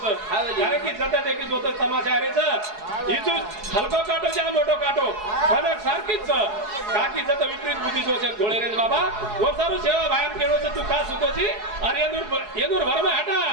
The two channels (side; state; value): left; late; 4.7 ms